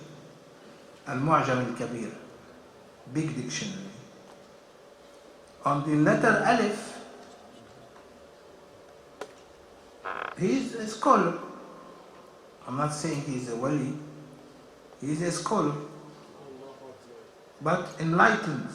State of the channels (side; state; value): both; identical; correlation 1.00